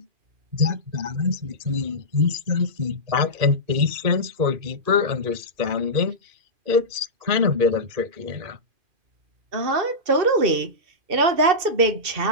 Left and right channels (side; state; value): left; late; 2.7 ms